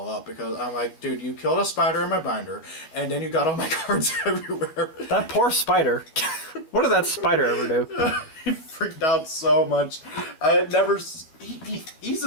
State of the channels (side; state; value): right; late; 13 ms